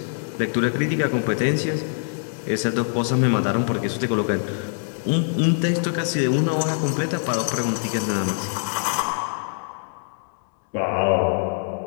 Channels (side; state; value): right; silent; 63 dB below the other